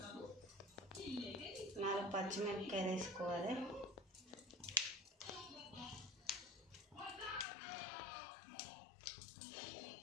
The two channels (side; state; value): right; drops out; at 7.5 s